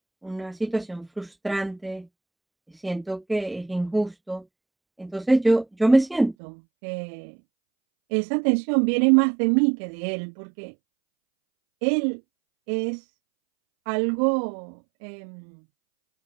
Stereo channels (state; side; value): drops out; left; at 6.4 s